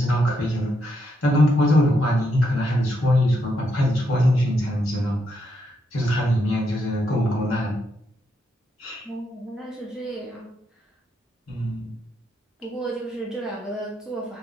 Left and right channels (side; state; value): both; normal; correlation 0.79